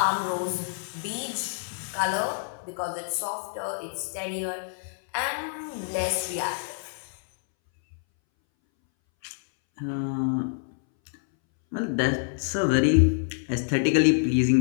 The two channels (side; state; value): right; silent; 60 dB below the other